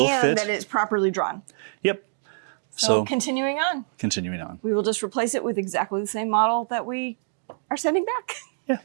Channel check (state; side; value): silent; left; digital silence